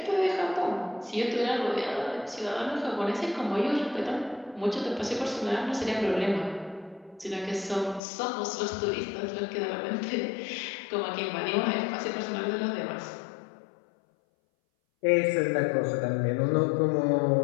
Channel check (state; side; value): drops out; right; at 8.0 s